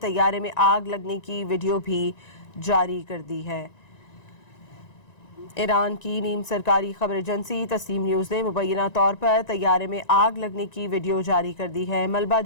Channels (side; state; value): right; late; 1.9 ms